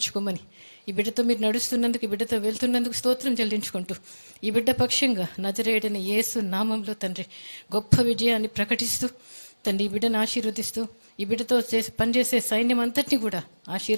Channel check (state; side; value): inverted; both; correlation -1.00